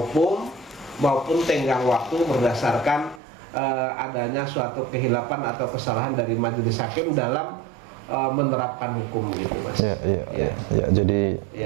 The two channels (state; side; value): drops out; left; at 3.2 s